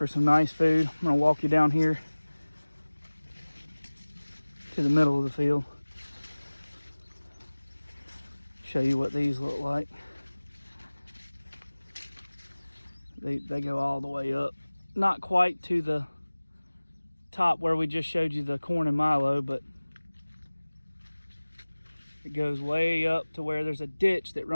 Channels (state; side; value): inverted; both; correlation -1.00